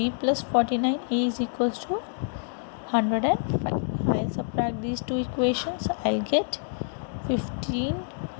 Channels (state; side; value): silent; right; digital silence